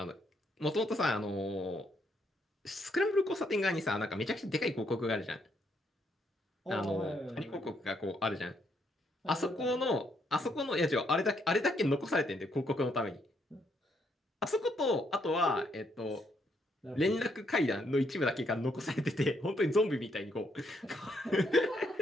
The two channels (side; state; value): both; normal; correlation 0.74